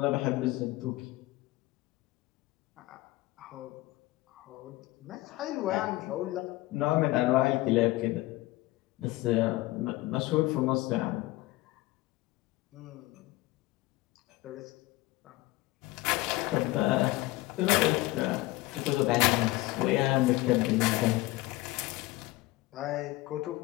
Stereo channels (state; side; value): quieter; right; 19.1 dB